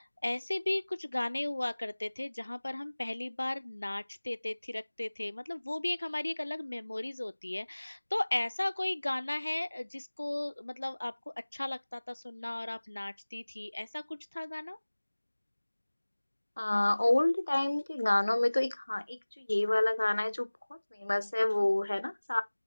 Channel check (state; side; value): inverted; both; correlation -1.00